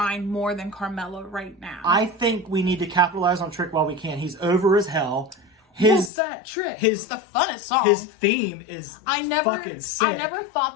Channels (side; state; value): right; drops out; at 6.1 s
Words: more than Carmelo right now. I think we need to capitalize on Trick while we can. He's over as hell. What's that Trick? It's the funnest song. His theme is fucking sick. I never